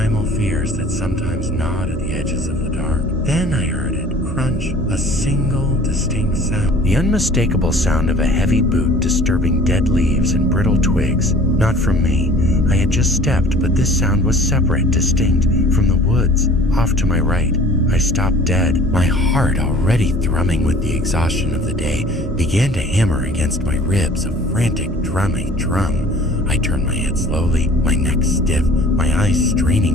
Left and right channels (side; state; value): both; normal; correlation 0.49